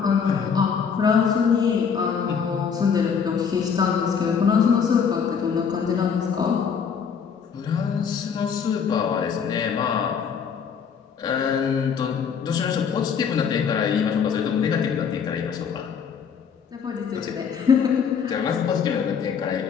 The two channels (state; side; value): quieter; right; 6.7 dB